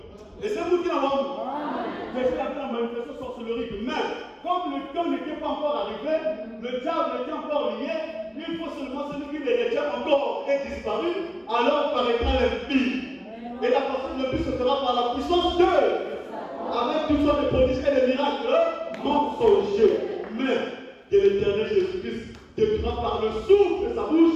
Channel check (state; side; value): identical; both; correlation 1.00